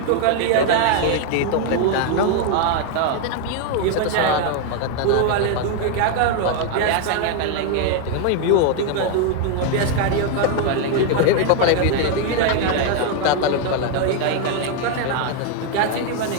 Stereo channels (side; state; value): both; different; correlation 0.01